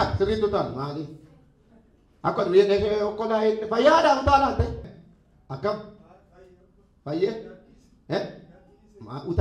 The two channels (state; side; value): identical; both; correlation 1.00